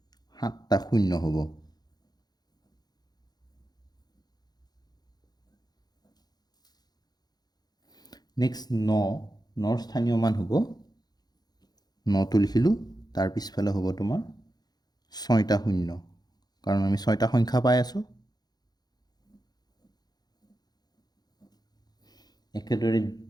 7টা শূন্য হ'ব। নেক্সট 9ৰ স্থানীয় মান হ'ব 9টো লিখিলোঁ, তাৰ পিছফালে হ'ব তোমাৰ 6টা শূন্য, কাৰণ আমি 6টা সংখ্যা পাই আছোঁ। একেদৰে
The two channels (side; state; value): right; late; 0.19 ms